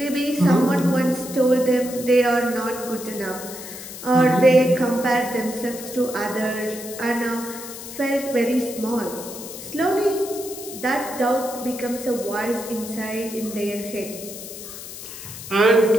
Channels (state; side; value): noise; left; hiss, 12 dB below the sound